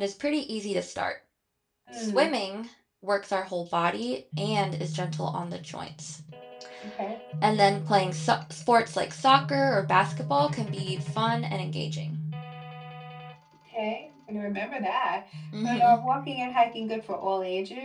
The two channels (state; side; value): identical; both; correlation 1.00